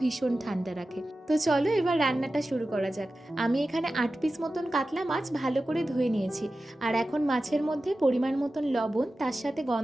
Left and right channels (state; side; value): normal; both; correlation 0.94